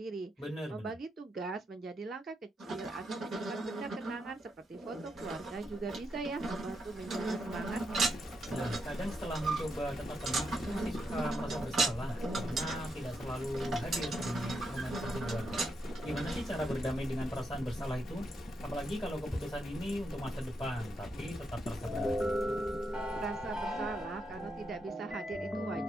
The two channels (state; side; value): normal; both; correlation 0.81